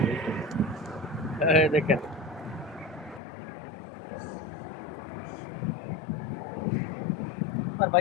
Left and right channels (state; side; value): drops out; right; at 3.2 s